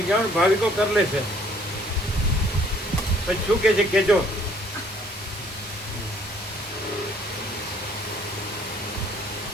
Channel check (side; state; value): both; normal; correlation 0.61